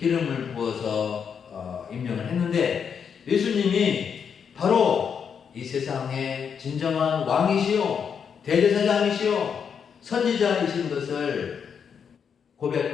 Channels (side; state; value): right; quieter; 7.0 dB